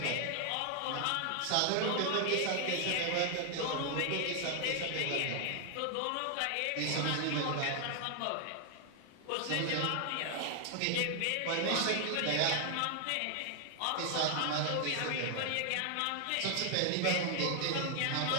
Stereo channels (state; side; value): different; both; correlation 0.00